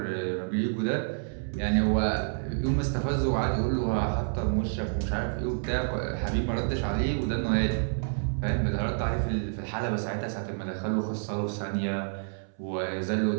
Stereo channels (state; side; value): silent; left; 59 dB below the other